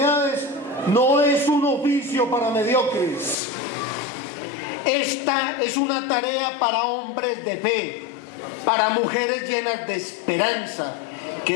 no es un oficio para mediocres. Esta es una tarea para hombres de fe, para mujeres llenas de esperanza,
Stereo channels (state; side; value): drops out; right; at 3.4 s